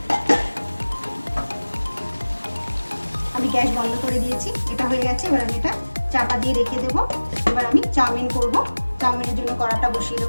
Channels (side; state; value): both; inverted; correlation -1.00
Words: আমি গ্যাস বন্ধ করে দিয়েছি, এটা হয়ে গেছে। এবার আমি এটা চাপা দিয়ে রেখে দেবো। এবার আমি চাউমিন করব। চাউমিনের জন্য কড়াটা বসিয়ে